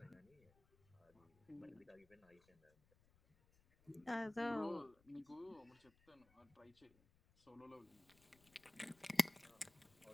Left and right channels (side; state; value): left; noise; rumble, 29 dB below the sound